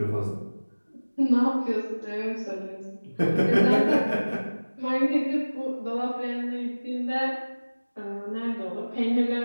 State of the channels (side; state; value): both; inverted; correlation -1.00